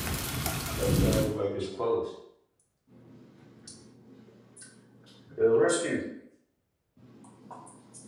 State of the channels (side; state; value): both; identical; correlation 1.00